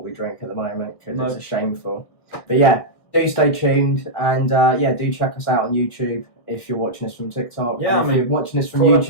we drink at the moment because it's a shameful. But yeah, do stay tuned and do check us out on YouTube if you're watching us from TikTok. Yeah, if you're watching us from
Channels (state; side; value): late; right; 1.6 ms